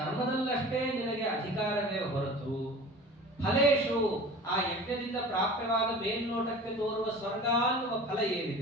ನಿನಗೆ ಅಧಿಕಾರವೇ ಹೊರತು ಫಲೇಶು, ಆ ಯಜ್ಞದಿಂದ ಪ್ರಾಪ್ಯವಾದ ಮೇಲ್ನೋಟಕ್ಕೆ ತೋರುವ ಸ್ವರ್ಗ ಅನ್ನುವ ಫಲ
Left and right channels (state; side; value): normal; both; correlation 0.39